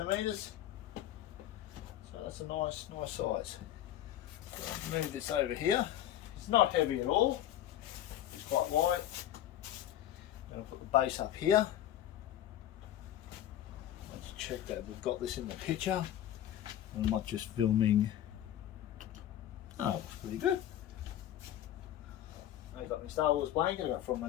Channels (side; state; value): right; quieter; 11.9 dB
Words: So that's a nice size. So I'll move this over here. It's not heavy at all. It's quite light. I'm going to put the base up here. Let's check that we've got this in the picture. I'm not just filming. Oh, looks pretty good. I've got my Star Wars blanket I got from my